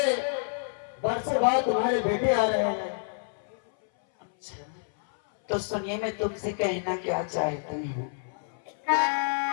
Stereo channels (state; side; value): silent; right; 59 dB below the other